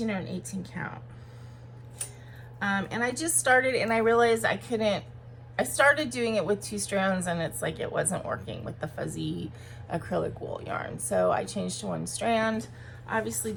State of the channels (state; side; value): identical; both; correlation 1.00